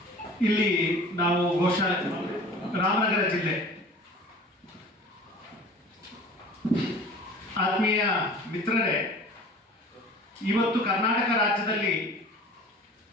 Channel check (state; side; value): normal; both; correlation 0.43